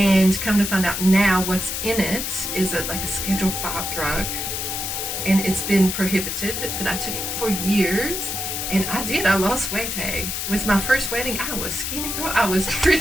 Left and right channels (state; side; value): noise; left; hiss, 3 dB below the sound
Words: come to find out now, what's in it is like a Schedule 5 drug, and it's been prohibited. But I took it for years, and I lost weight. With my first wedding, I was skinny, girl. I was